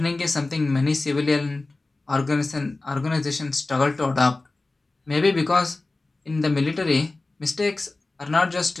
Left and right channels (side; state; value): right; quieter; 3.2 dB